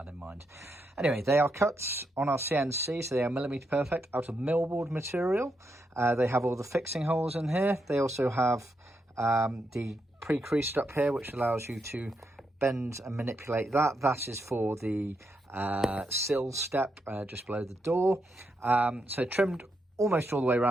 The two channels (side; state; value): both; normal; correlation 0.82